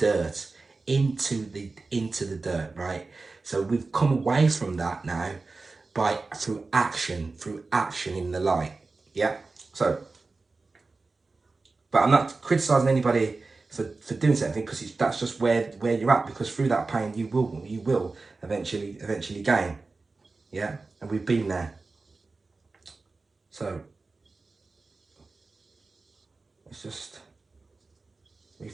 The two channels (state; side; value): quieter; left; 3.8 dB